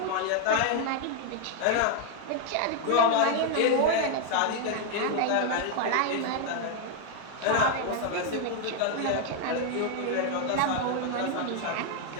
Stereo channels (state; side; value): different; both; correlation 0.00